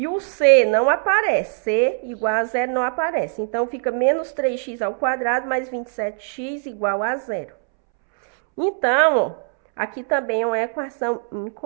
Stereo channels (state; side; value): silent; left; 65 dB below the other